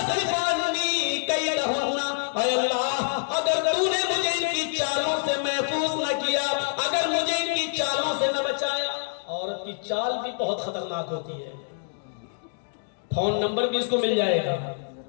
عنی کیدہن, اے اللہ اگر تو نے مجھے ان کی چالوں سے محفوظ نہ کیا, اگر مجھے ان کی چالوں سے نہ بچایا. عورت کی چال بھی بہت خطرناک ہوتی ہے, فون نمبر بھی اس کو مل جائے گا,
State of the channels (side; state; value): right; silent; digital silence